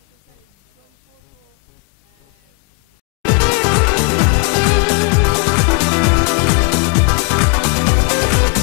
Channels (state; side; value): quieter; right; 35.7 dB